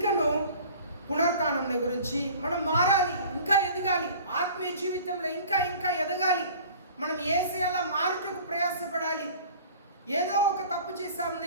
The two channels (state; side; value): inverted; both; correlation -0.45